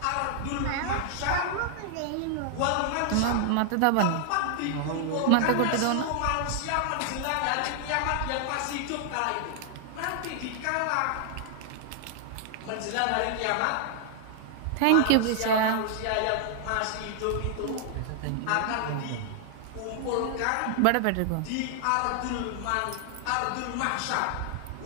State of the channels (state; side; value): different; both; correlation 0.00